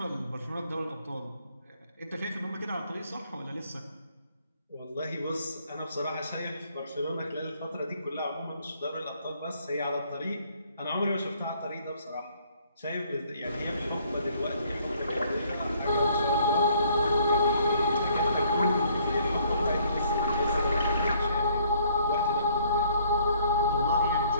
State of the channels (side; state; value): both; inverted; correlation -0.62